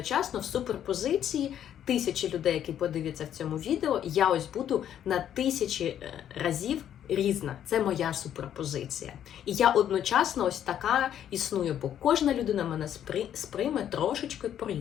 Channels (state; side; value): quieter; right; 10.2 dB